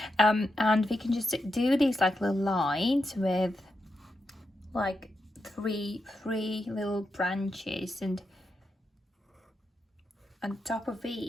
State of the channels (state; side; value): normal; both; correlation 0.86